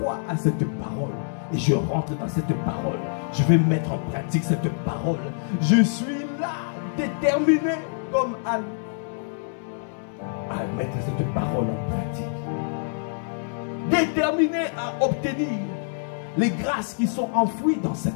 à cette parole. Et je rentre dans cette parole. Je vais mettre en pratique cette parole. Je suis là, déterminé comme Anne, à mettre cette parole en pratique. Déterminé à obtenir les grâces qui sont enfouies dans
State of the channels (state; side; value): silent; right; 61 dB below the other